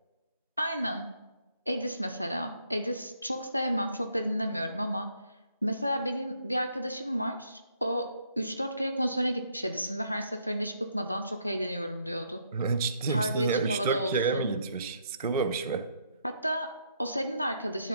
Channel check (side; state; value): both; inverted; correlation -0.71